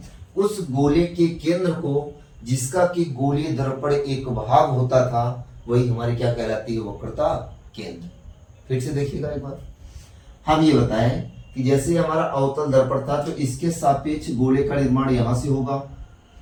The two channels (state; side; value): identical; both; correlation 1.00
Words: उस गोले के केंद्र को जिसका कि गोलीय दर्पण एक भाग होता था वही हमारी क्या कहलाती है, वक्रता केंद्र। फिर से देखिएगा एक बार, हम ये बताएं कि जैसे हमारा अवतल दर्पण था तो इसके सापेक्ष गोले का निर्माण यहां से होगा।